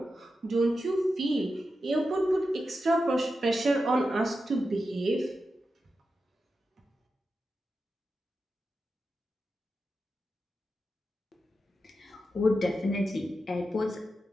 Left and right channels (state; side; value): normal; both; correlation 0.90